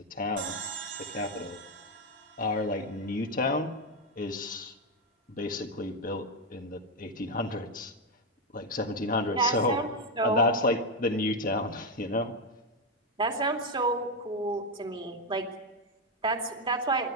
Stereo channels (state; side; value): normal; both; correlation 0.06